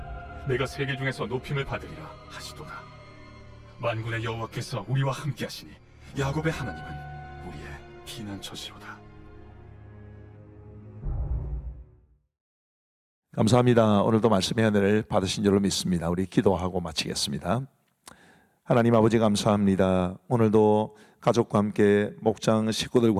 내가 세계 중에서 높임을 받으리라 하시도다. 만군의 여호와께서 우리와 함께하시니 야곱의 하나님은 우리의 피난처시로다. 감사합니다. 오늘도 말씀의 은혜를 받으신 줄로 믿습니다. 우리 기도하고 마치겠습니다. 하나님 아버지 감사합니다. 오늘도 가족과 함께 목장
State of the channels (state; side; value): identical; both; correlation 1.00